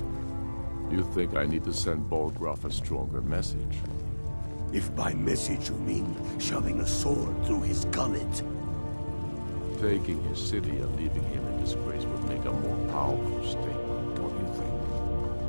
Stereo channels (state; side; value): inverted; both; correlation -1.00